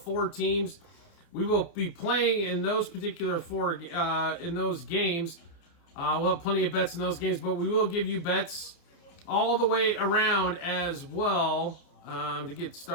teams. We will be playing in those particular in those games. We'll have plenty of bets in those games, but we will give you bets all the way around as well to get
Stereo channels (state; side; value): late; right; 29 ms